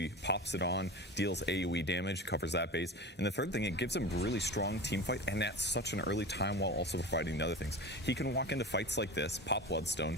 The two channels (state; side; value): normal; both; correlation 0.30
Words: pops it on, deals AoE damage, covers that base. And the third thing, it gives him really strong team fight, and at such an early time while also providing the other things. He can walk into fights like this, pop